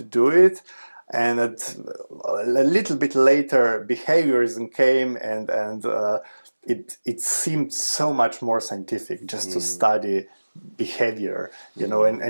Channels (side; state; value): both; inverted; correlation -1.00